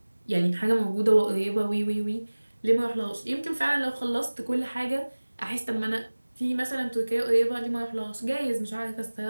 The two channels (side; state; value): both; inverted; correlation -1.00